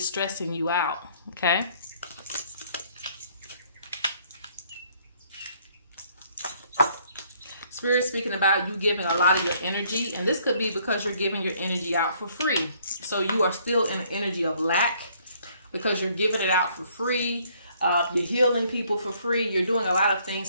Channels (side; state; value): both; inverted; correlation -0.64